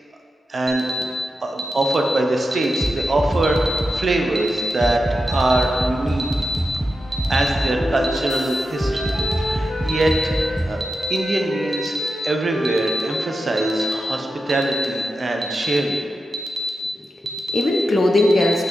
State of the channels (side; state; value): both; normal; correlation 0.89